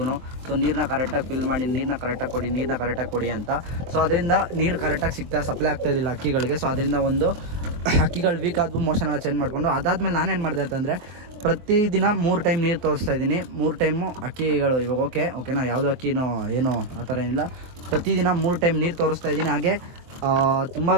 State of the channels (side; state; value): left; late; 23 ms